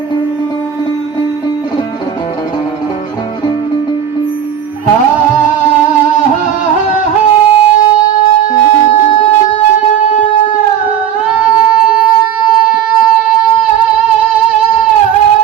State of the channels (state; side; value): quieter; left; 9.3 dB